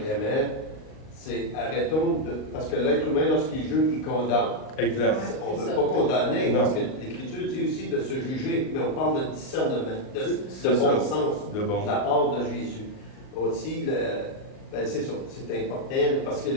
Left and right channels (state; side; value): late; right; 38 ms